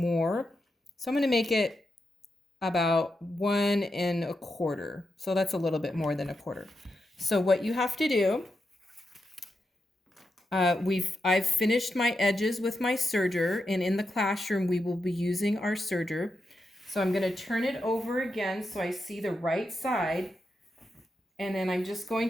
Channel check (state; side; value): normal; both; correlation 0.86